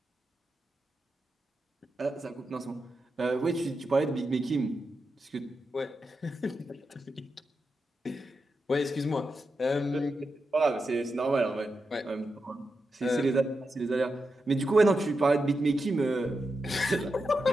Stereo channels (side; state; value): both; normal; correlation 0.88